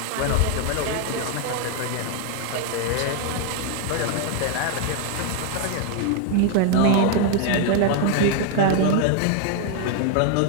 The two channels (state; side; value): different; both; correlation 0.00